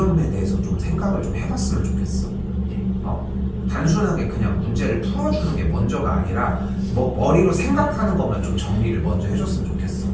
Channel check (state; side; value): identical; both; correlation 1.00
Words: 대해서 좀 생각을 좀 해봤으면 좋겠어. 단순하게 그냥 문제를 풀어주는 게 먼저가 아니라 뭐 머리로 생각하는 것만 좀 정리를 먼저 해줬으면 좋겠어.